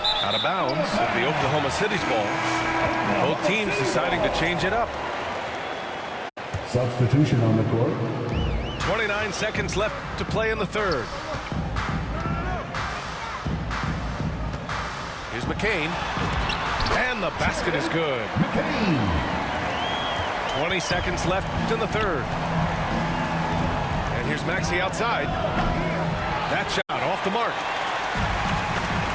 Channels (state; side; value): identical; both; correlation 1.00